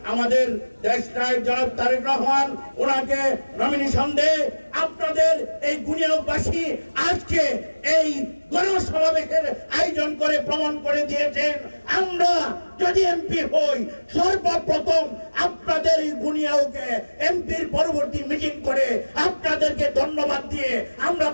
আমাদের দেশ নায়ক জনাব তারেক রহমান ওনাকে নমিনেশন দেয়, আপনাদের এই বুনিয়াদবাসী আজকে এই গণসমাবেশের আয়োজন করে প্রমাণ করে দিয়েছেন আমরা যদি এমপি হই সর্বপ্রথম আপনাদের এই বুনিয়াদকে এমপির পরবর্তী মিটিং করে আপনাদেরকে ধন্যবাদ দিয়ে আমরা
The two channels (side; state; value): both; inverted; correlation -1.00